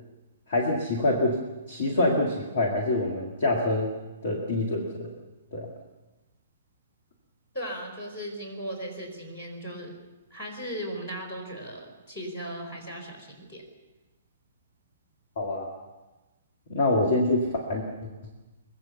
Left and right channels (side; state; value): both; inverted; correlation -0.50